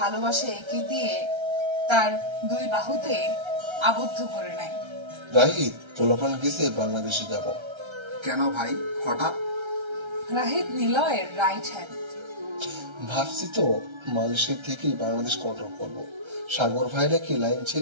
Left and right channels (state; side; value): late; left; 1.3 ms